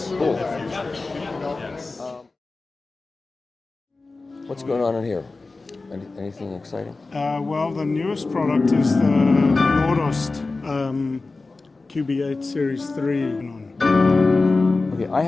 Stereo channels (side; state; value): right; quieter; 3.6 dB